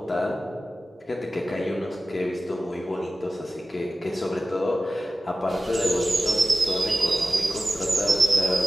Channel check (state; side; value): normal; both; correlation 0.95